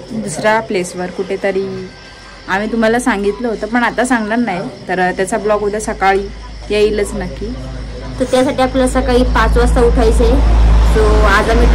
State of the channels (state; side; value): identical; both; correlation 1.00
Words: दुसऱ्या प्लेसवर कुठेतरी. आम्ही तुम्हाला सांगितलं होतं पण आता सांगणार नाही. तर त्याचा ब्लॉग उद्या सकाळी येईलच नक्की. तर त्यासाठी आपल्याला सकाळी 5 वाजता उठायचंय. सो आज आम्ही